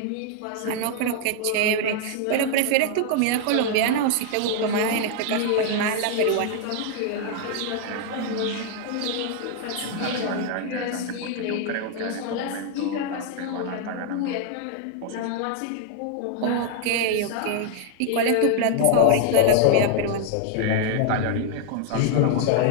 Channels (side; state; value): both; different; correlation 0.00